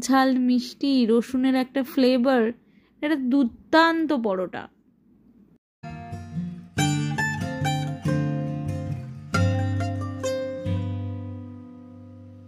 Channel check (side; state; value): both; identical; correlation 1.00